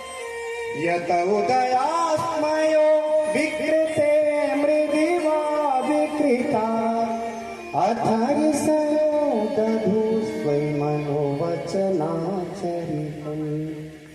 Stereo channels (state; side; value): identical; both; correlation 1.00